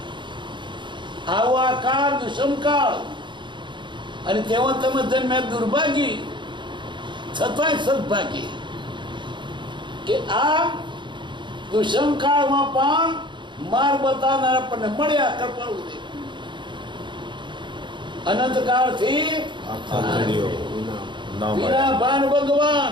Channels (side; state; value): left; late; 0.23 ms